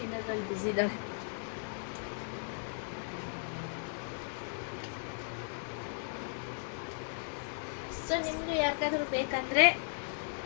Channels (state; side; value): silent; right; digital silence